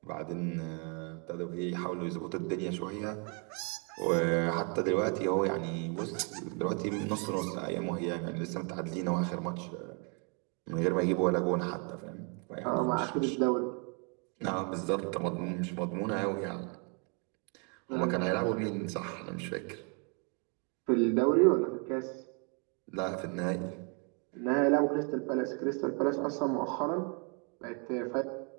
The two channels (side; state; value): left; quieter; 36.8 dB